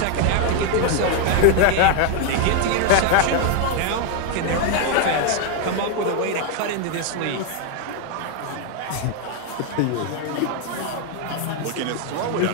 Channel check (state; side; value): different; both; correlation 0.01